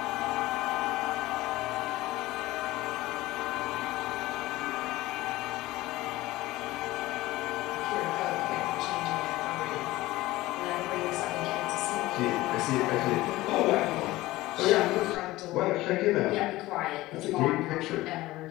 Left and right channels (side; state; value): right; quieter; 18.0 dB